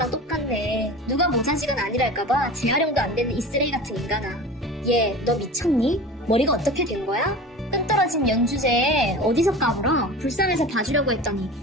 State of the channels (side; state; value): both; normal; correlation 0.35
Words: 똑같네. 누가 모자지간 아니랄까봐 재활용도 안 되는 이 쓰레기 같은 인간아. 얘, 너 미쳤니? 머리가 어떻게 된 거야? 끈떨어진 연주제에 어디서 까불어? 불쌍해서 봐주려고 했더니